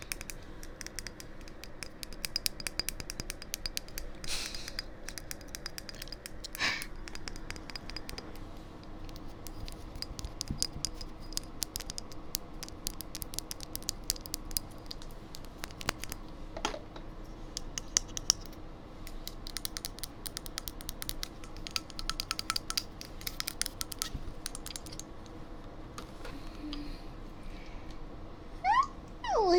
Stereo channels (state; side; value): identical; both; correlation 1.00